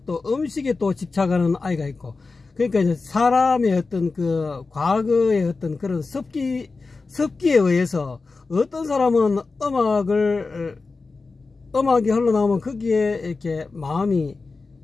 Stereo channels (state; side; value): quieter; right; 4.0 dB